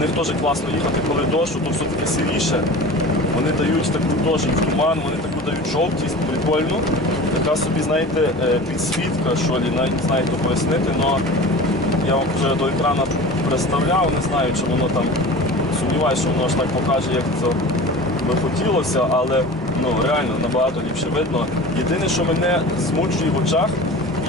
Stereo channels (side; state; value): both; normal; correlation 0.36